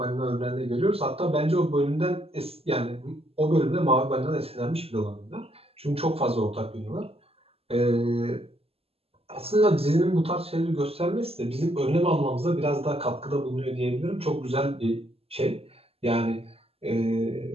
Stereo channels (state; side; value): late; left; 0.29 ms